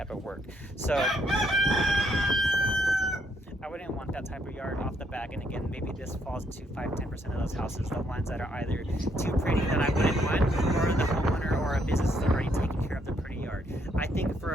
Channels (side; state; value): both; normal; correlation 0.72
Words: of work. So I wouldn't want that type of yard off the back. And again, maybe this falls into 5-10% of those houses, the ones that are either too pretty that I wouldn't want, or the homeowner or a business is already taking care of the pretty yard. I think